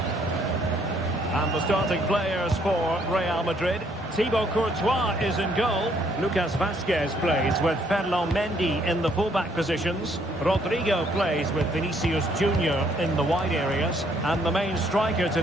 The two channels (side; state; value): both; normal; correlation 0.67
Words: And the starting players for Real Madrid. Thibaut Courtois is in goal. Lucas Vazquez plays with Ferland Mendy in the fullback positions. Rodrigo plays with Vinicius Junior in the wide areas. And the main striker